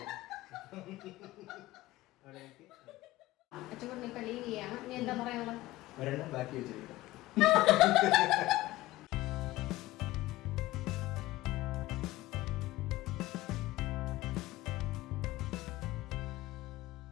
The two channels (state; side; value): quieter; right; 17.5 dB